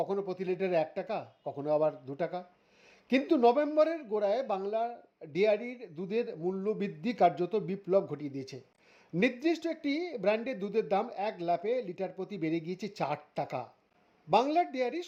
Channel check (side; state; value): both; identical; correlation 1.00